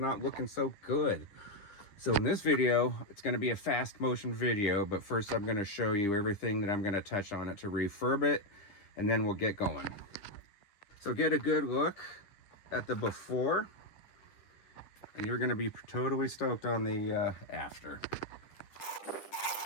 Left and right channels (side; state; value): right; late; 10 ms